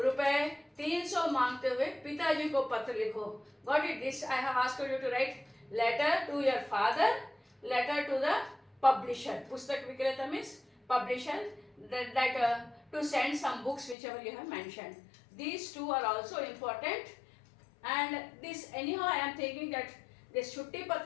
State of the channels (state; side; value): drops out; right; at 14.0 s